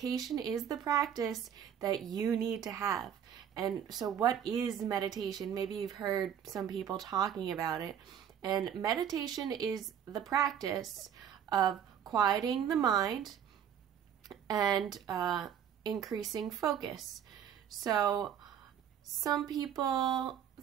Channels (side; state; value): left; quieter; 9.1 dB